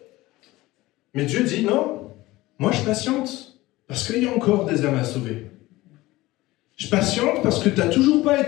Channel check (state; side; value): quieter; right; 18.7 dB